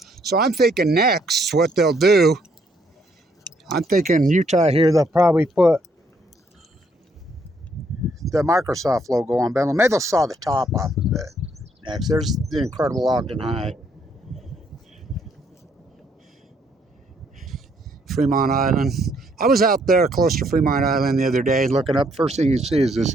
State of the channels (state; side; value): normal; both; correlation 0.69